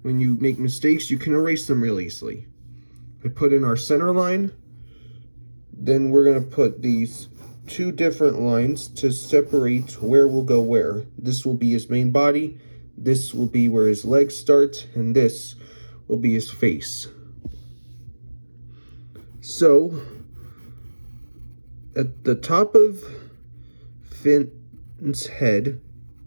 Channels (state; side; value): inverted; both; correlation -1.00